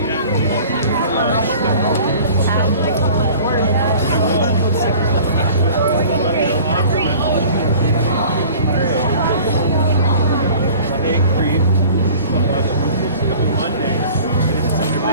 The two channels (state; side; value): inverted; both; correlation -0.45